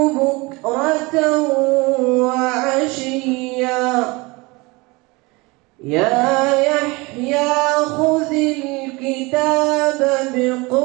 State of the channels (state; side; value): quieter; left; 24.9 dB